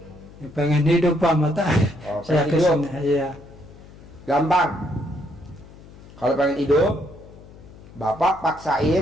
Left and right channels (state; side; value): noise; left; hum, 20 dB below the sound